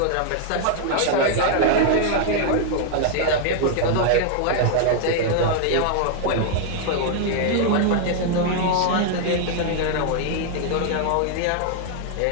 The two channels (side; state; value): both; different; correlation 0.00